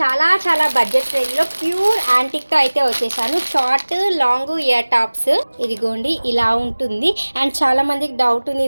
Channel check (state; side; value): inverted; both; correlation -1.00